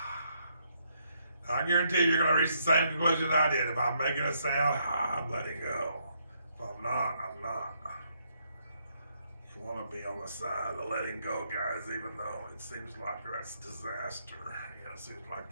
I guarantee you're going to reach the same conclusion I did. If I'm making a sound, I'm letting go. If I'm not, I'm not. You want to be on the side of letting go, guys, even though it seems like that's disaster. It seems like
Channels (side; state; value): both; inverted; correlation -0.74